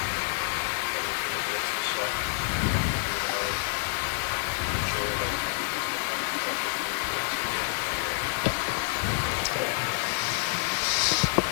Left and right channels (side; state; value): right; silent; digital silence